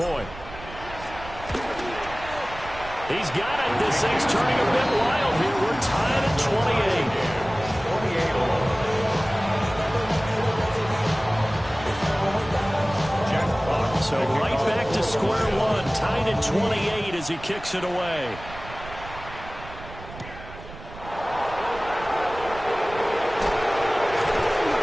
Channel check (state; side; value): noise; right; rumble, 15 dB below the sound